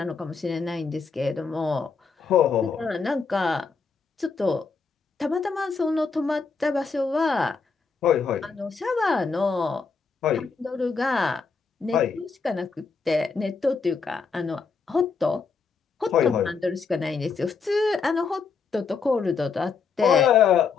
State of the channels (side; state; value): right; quieter; 5.1 dB